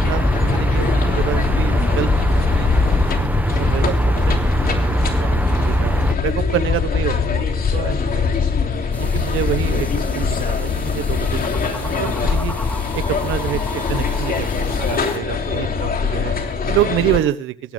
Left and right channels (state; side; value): normal; both; correlation 0.62